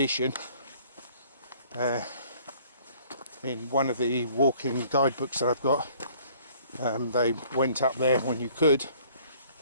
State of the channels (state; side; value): inverted; both; correlation -0.56